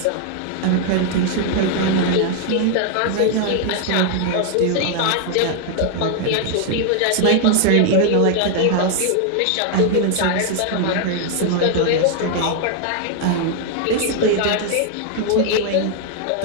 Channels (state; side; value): different; both; correlation 0.00